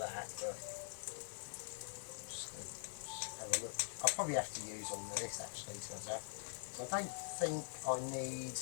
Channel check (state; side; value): silent; right; digital silence